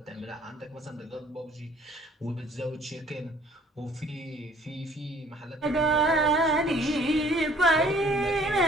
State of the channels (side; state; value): both; normal; correlation 0.56